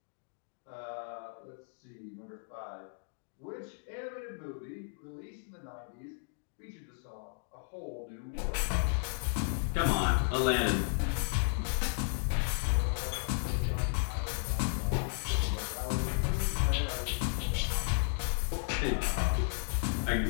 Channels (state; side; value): silent; right; digital silence